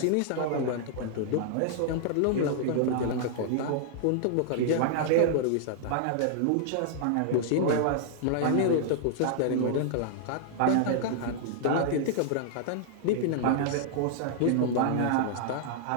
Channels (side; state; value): both; different; correlation -0.01